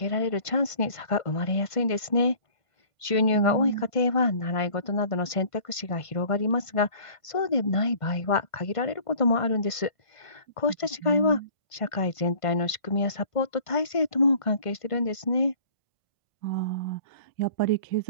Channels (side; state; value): right; late; 1.5 ms